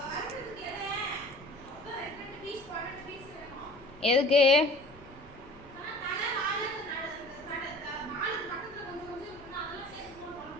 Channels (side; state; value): left; noise; rumble, 22 dB below the sound